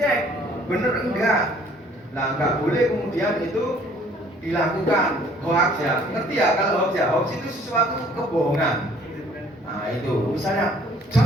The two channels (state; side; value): normal; both; correlation 0.57